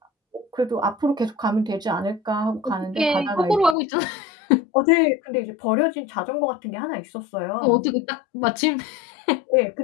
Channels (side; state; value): right; drops out; at 3.8 s